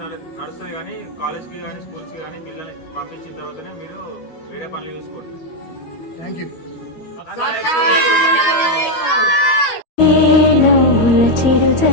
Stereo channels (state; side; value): late; right; 13 ms